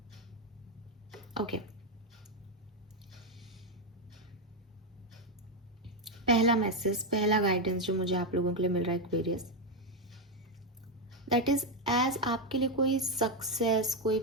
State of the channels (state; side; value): normal; both; correlation 0.05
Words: ओके, पहला मैसेज, पहला गाइडेंस जो मुझे आप लोगों के लिए मिल रहा है एक्वेरियस, दैट इज एज आपके लिए कोई सक्सेस, कोई